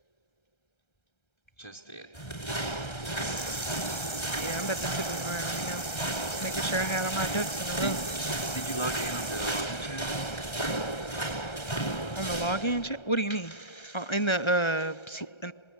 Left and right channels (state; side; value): late; right; 1.3 ms